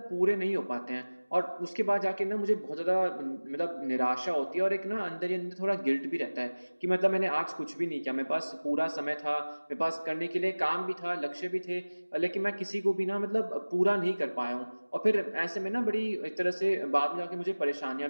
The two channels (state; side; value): inverted; both; correlation -1.00